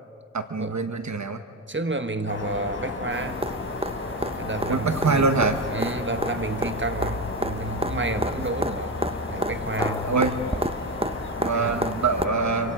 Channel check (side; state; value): both; normal; correlation 0.15